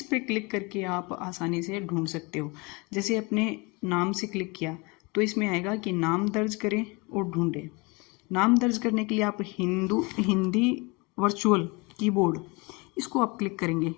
पे क्लिक करके आप आसानी से ढूंढ सकते हो। जैसे अपने नाम से क्लिक किया तो इसमें आएगा कि नाम दर्ज करें और ढूंढें। नाम दर्ज करने के लिए आप हिंदी वर्चुअल कीबोर्ड इसको आप क्लिक करेंगे,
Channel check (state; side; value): quieter; right; 27.6 dB